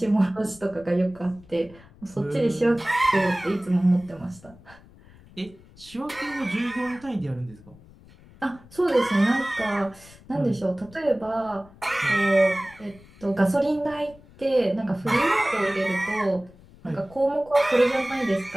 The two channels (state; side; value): noise; left; rumble, 23 dB below the sound